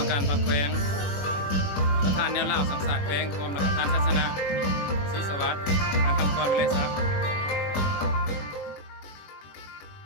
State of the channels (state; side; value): late; right; 21 ms